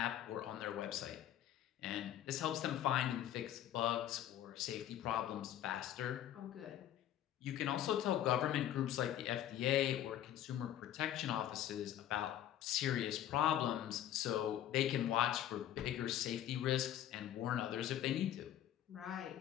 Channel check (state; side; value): quieter; right; 11.6 dB